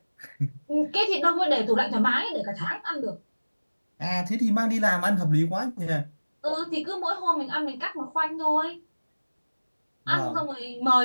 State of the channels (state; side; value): inverted; both; correlation -1.00